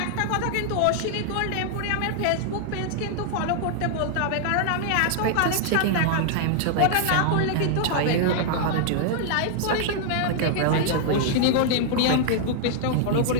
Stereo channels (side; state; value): both; different; correlation -0.01